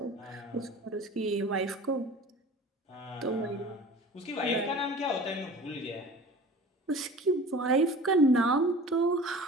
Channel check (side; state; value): both; normal; correlation 0.41